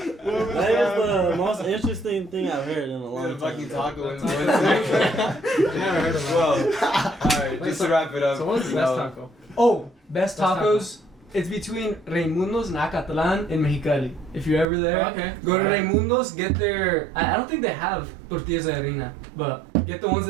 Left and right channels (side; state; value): left; drops out; at 14.7 s